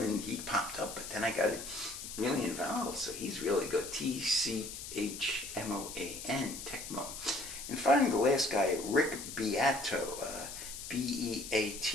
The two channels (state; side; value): noise; left; hiss, 9 dB below the sound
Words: he popped up. But then I got really involved. So he's really good. Tchmoan, Tecmo. And finally, the last guy, Rick Beato.